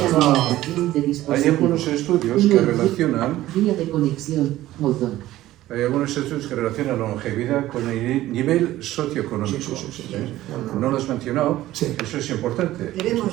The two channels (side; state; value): left; quieter; 15.2 dB